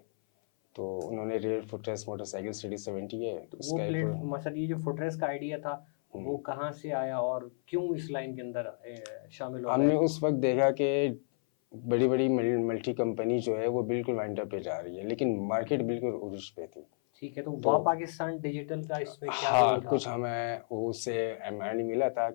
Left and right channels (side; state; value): right; silent; 56 dB below the other